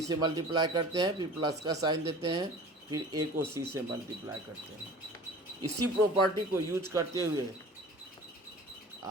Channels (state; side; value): normal; both; correlation 0.42